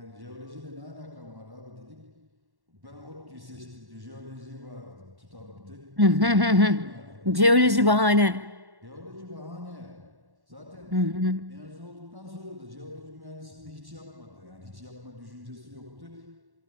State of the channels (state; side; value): late; left; 1.1 ms